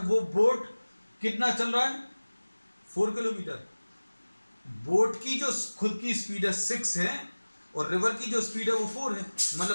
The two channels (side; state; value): both; inverted; correlation -1.00